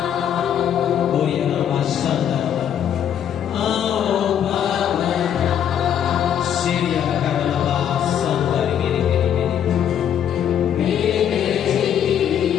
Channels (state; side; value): quieter; right; 9.4 dB